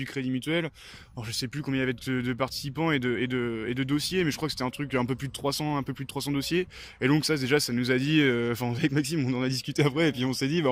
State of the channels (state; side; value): identical; both; correlation 1.00